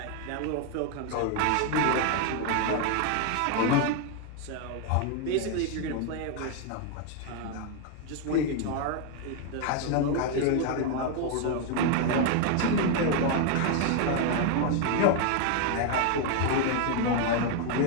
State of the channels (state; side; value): different; both; correlation 0.01